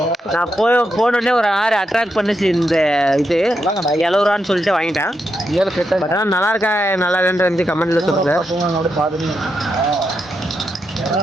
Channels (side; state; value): both; normal; correlation 0.84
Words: நான் போனோடனே ஒரு ஆறு அட்ராக்ட் பண்ணிச்சு இந்த இது 70 ரூபான்னு சொல்லிட்டு வாங்கிட்டேன். ஆனால் நல்லா இருக்கா நல்லா இல்லைன்னு கமெண்ட்ல சொல்லுங்க.